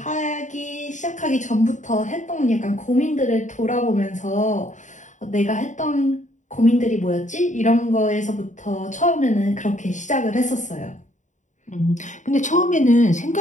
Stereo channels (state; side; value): late; right; 0.36 ms